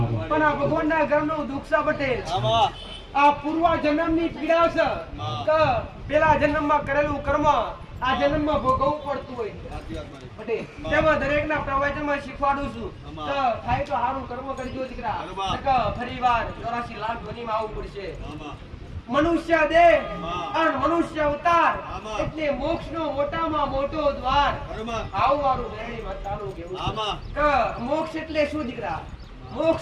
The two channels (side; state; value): both; identical; correlation 1.00